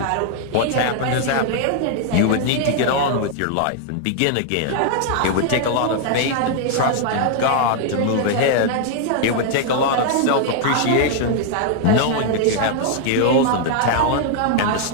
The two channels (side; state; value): both; different; correlation 0.00